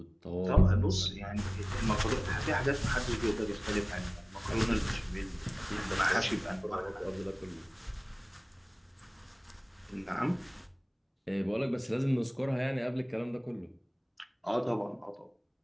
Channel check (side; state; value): both; identical; correlation 1.00